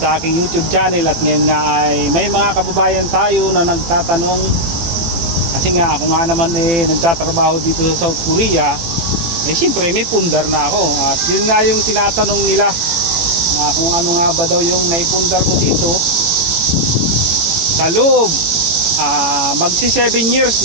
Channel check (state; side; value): late; left; 18 ms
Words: aking YouTube channel. At ngayon nga ay may mga kababayan tayo na nagtatanong, kasi nga ako nga naman nagtatrabaho dito sa South Korea, siyempre may pundar na ako. At yun nga yung tinatanong nila na kung ano nga ba daw yung naipundar ko dito sa loob. Magsi 7 years